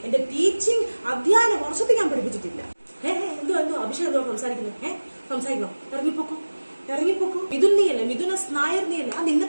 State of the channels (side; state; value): both; inverted; correlation -1.00